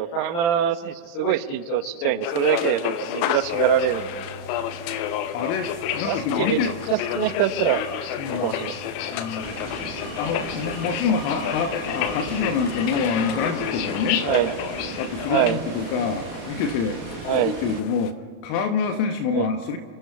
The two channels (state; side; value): late; right; 35 ms